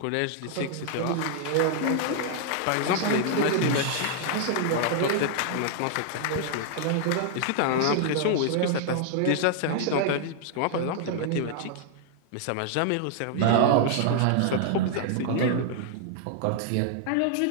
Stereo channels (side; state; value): both; different; correlation 0.00